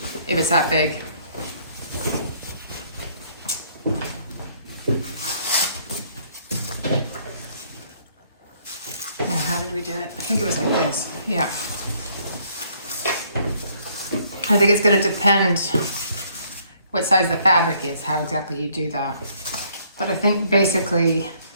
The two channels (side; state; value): both; inverted; correlation -0.65